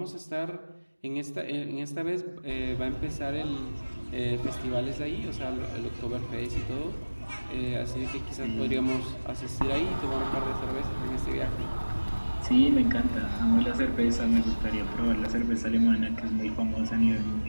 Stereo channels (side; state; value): both; inverted; correlation -1.00